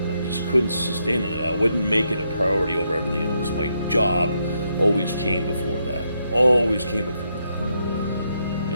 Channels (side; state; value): both; inverted; correlation -0.79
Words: I just couldn't sustain it. I wouldn't make it a priority over everything else. My job always came before that. Always came before that. You